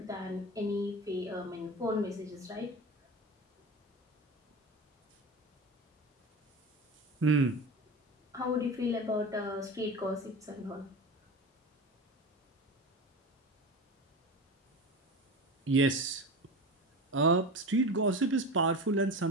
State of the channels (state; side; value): normal; both; correlation 0.28